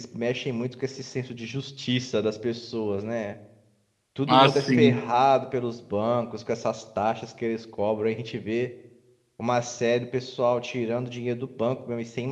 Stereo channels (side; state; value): both; identical; correlation 1.00